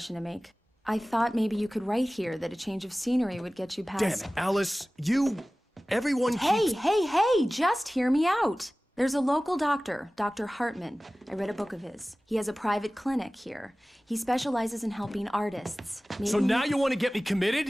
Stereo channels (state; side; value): normal; both; correlation 0.97